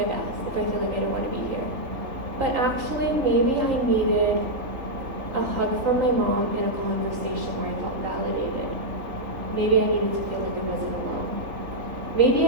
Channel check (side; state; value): left; late; 3.4 ms